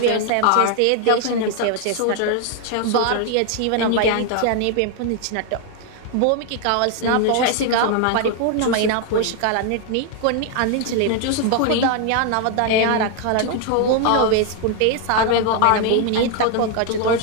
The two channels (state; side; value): different; both; correlation 0.01